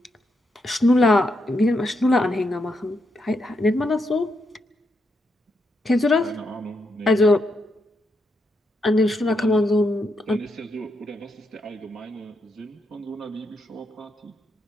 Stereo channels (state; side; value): normal; both; correlation 0.81